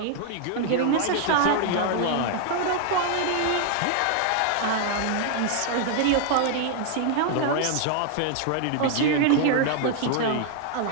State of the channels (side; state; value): both; different; correlation 0.00